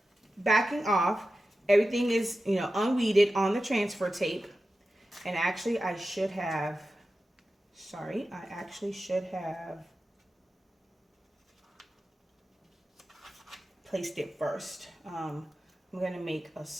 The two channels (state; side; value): normal; both; correlation 0.93